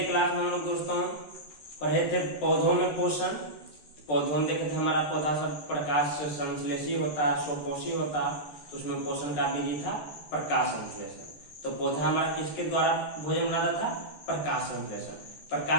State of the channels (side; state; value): right; late; 13 ms